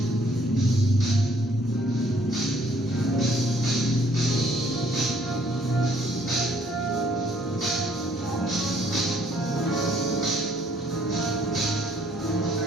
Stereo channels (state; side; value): normal; both; correlation 0.63